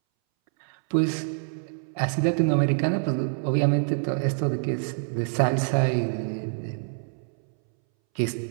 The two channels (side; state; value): left; silent; 61 dB below the other